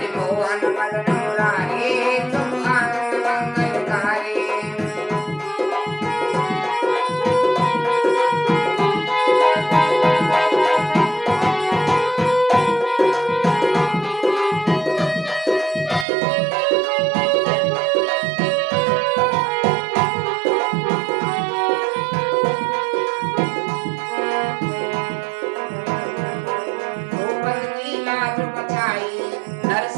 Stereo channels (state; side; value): drops out; left; at 16.1 s